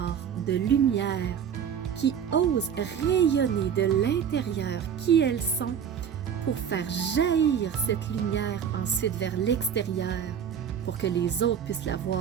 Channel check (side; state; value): left; quieter; 8.1 dB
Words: de lumière qui osent rayonner de l'intérieur qui elles sont pour faire jaillir cette lumière ensuite vers l'extérieur pour que les autres puissent la